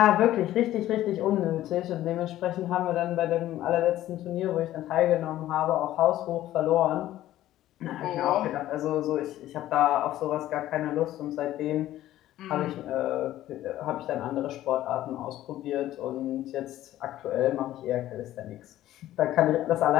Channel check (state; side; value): quieter; right; 13.9 dB